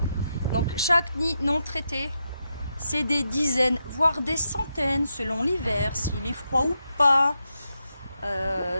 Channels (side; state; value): both; inverted; correlation -0.85